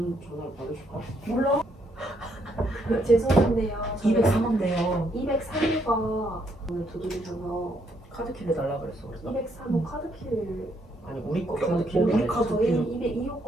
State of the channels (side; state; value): both; normal; correlation 0.73